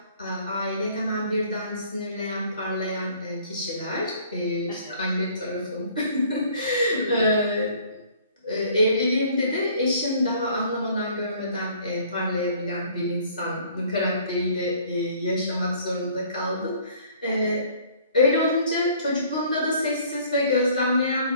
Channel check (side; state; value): both; inverted; correlation -0.56